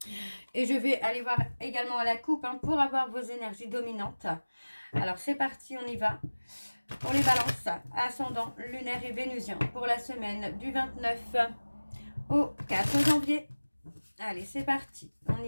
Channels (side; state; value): both; inverted; correlation -1.00